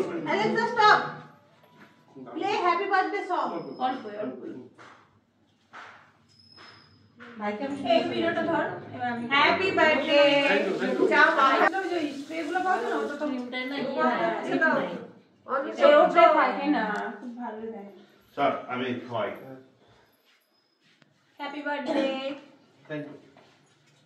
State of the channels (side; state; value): both; identical; correlation 1.00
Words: Play happy birthday song. এই ভিডিওটা ধর। Happy birthday. যাও বাবা যে স্প্রে গুলো পাও না, ওটা তো নিউটাই না এই ওটা থাকে না, খুব ভালো দেয়। স্যার আমি খাওয়াই। Happy birthday. Thank you.